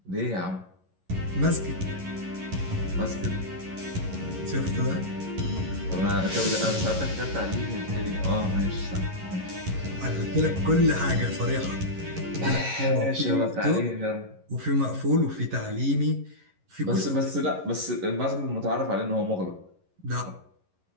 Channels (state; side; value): late; left; 11 ms